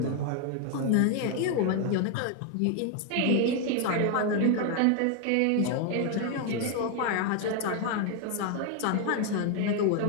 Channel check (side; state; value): both; different; correlation 0.00